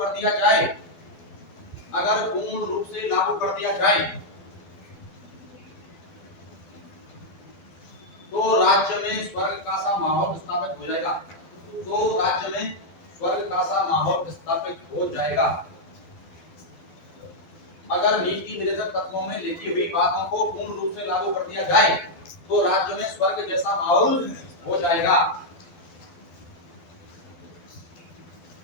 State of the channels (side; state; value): right; late; 12 ms